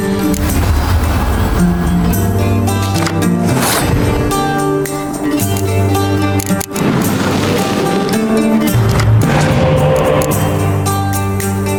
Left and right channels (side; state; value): both; identical; correlation 1.00